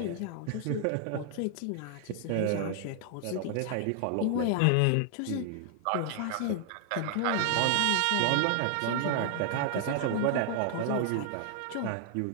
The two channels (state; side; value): different; both; correlation 0.00